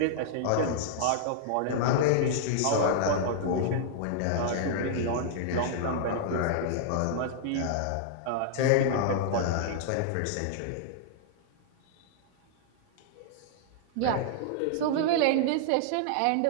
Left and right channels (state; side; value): different; both; correlation -0.01